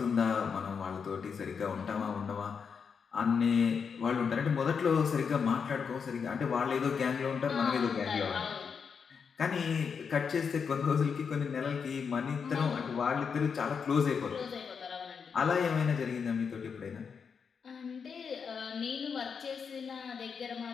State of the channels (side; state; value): right; quieter; 6.2 dB